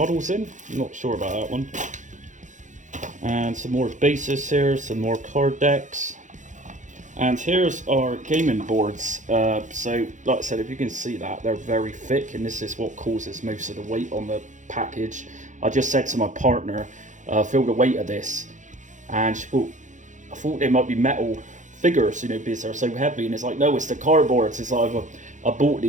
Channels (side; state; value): left; late; 0.36 ms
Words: in. I'm not sure about that one. And some more bases here, some more card decks. And here's our gaming boards. So like I said, if you can see that, they're very thick, and this is what causes most of the weight on the package. I just said to my partner, feel the weight of this, and she thought, I thought they might be metal figures, you know, because they're so heavy. And it's like, no, it's the cardboards. It's like I bought